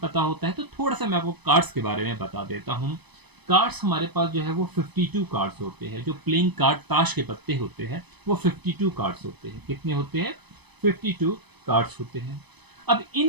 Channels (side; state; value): left; late; 0.99 ms